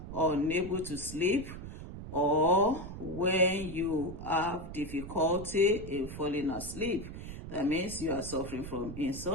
unable to sleep or when you have difficulty in falling asleep. That means you are suffering from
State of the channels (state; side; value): noise; right; rumble, 10 dB below the sound